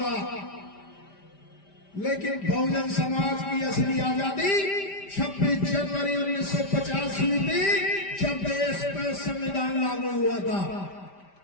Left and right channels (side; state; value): right; late; 5.1 ms